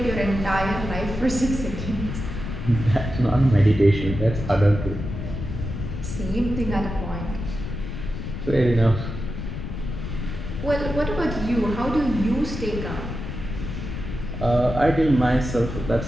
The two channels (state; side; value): noise; left; rumble, 6 dB below the sound